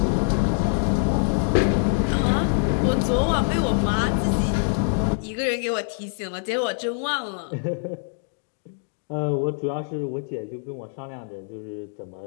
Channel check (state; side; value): silent; right; digital silence